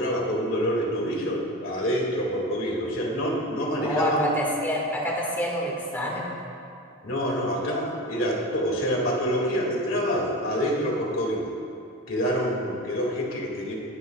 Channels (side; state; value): both; normal; correlation 0.28